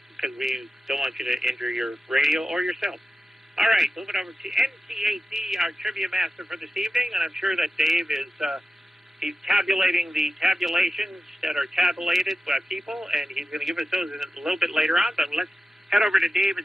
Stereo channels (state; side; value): normal; both; correlation 0.92